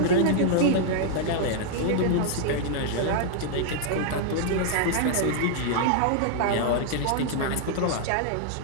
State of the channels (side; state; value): both; different; correlation -0.01